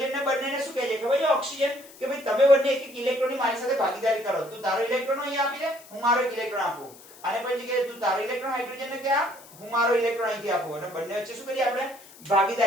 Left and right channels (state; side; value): noise; left; hiss, 21 dB below the sound